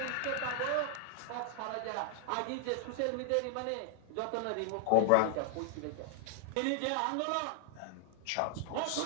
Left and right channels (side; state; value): both; different; correlation 0.00